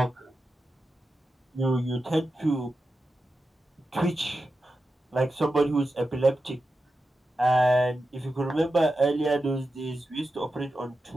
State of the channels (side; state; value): both; normal; correlation 0.91